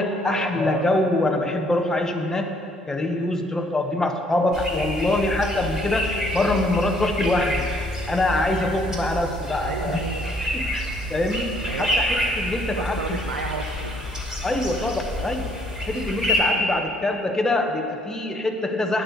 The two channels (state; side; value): normal; both; correlation 0.65